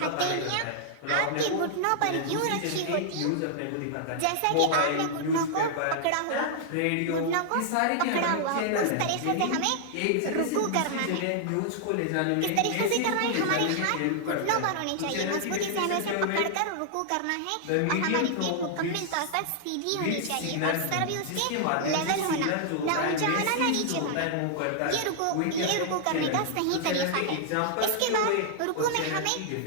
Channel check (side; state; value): both; different; correlation -0.01